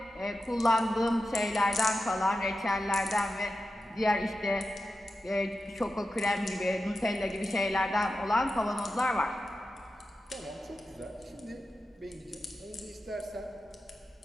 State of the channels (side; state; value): both; normal; correlation 0.91